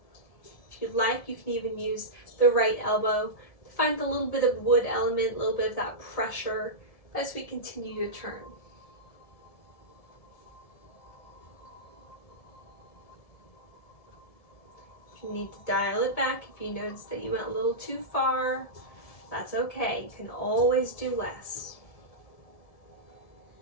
If you'd like, you can even use the right elbow to find a little bit of wood element, a little bit of that pressure as we continue to turn. If you need to dial it back, if you notice that you went a little too far, that's okay. You can always do less.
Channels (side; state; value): right; late; 1.7 ms